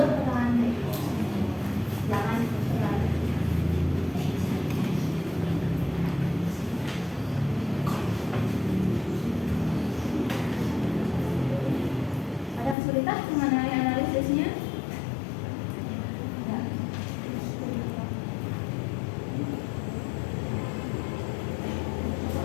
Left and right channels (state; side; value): drops out; right; at 12.8 s